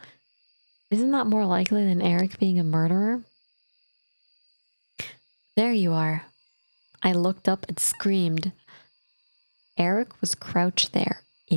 Isn't that more likely than Eric being a murderer? There you are. I looked up and screamed. Eric was crouched there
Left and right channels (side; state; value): both; inverted; correlation -1.00